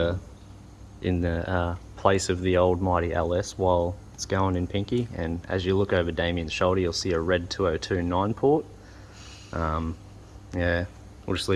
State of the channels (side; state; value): both; identical; correlation 1.00